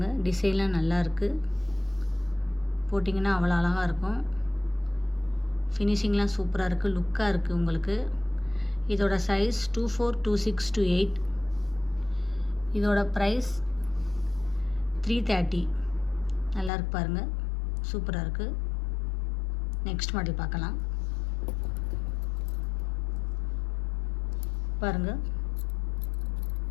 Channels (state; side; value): drops out; right; at 16.7 s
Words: டிசைன்லாம் நல்லா இருக்குது. போட்டிங்கன்னா அவ்வளோ அழகாக இருக்கும். ஃபினிஷிங்லாம் சூப்பராக இருக்குது, லுக்காக இருக்குது உங்களுக்கு. இதோட சைஸ் 24, 26, 28. இதோட ப்ரைஸ் 330. நல்லா இருக்கு பாருங்கள், சூப்பராக இருக்குது. நெக்ஸ்ட் மாடல் பார்க்கலாம். பாருங்கள்,